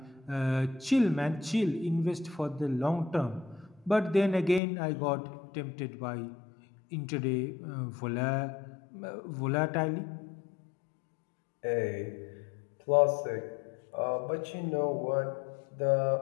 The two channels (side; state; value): right; drops out; at 4.6 s